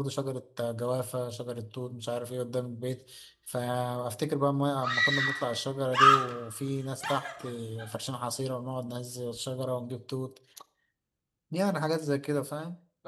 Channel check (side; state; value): both; identical; correlation 1.00